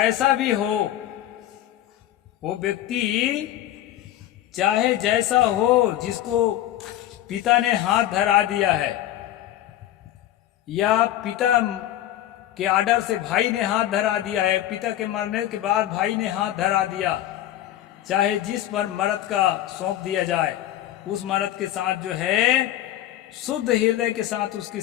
भी हो, वो व्यक्ति चाहे जैसा हो, जिसको पिता ने हाथ धरा दिया है या पिता के आर्डर से भाई ने हाथ धरा दिया है, पिता के मरने के बाद भाई ने हाथ धरा दिया, चाहे जिस पर मर्द का सौंप दिया जाए, उस मर्द के साथ जो है शुद्ध हृदय के साथ उसकी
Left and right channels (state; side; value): quieter; right; 13.0 dB